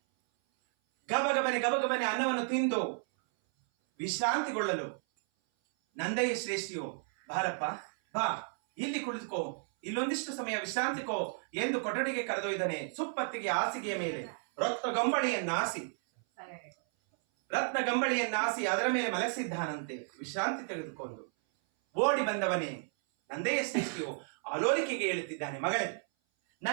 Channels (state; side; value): silent; left; 56 dB below the other